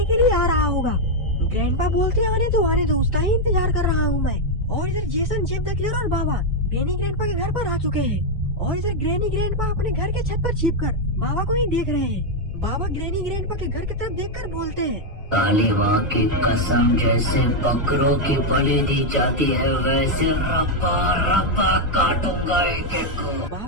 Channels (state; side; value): normal; both; correlation 0.01